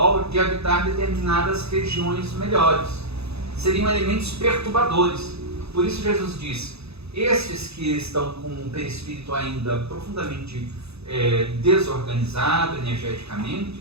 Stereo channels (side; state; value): left; late; 0.79 ms